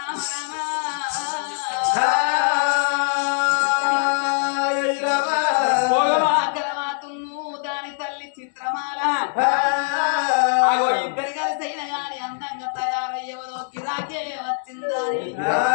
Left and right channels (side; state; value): right; silent; digital silence